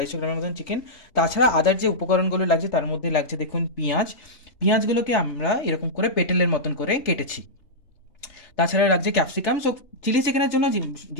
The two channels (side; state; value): right; late; 3.4 ms